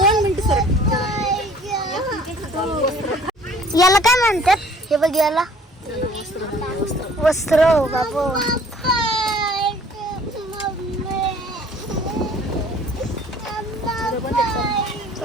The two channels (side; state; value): both; normal; correlation 0.53